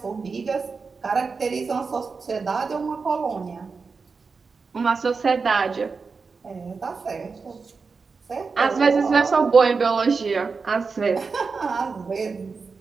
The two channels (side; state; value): left; quieter; 4.8 dB